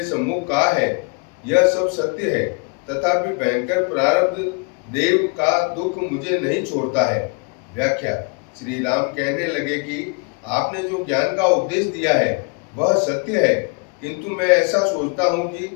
सम्मुख कहा है यह सब सत्य है, तथापि भयंकर प्रारब्ध देव का दुख मुझे नहीं छोड़ता है। व्याख्या। श्री राम कहने लगे कि आपने जो ज्ञान का उपदेश दिया है वह सत्य है, किंतु मैं ऐसा सोचता हूँ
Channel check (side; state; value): right; quieter; 33.6 dB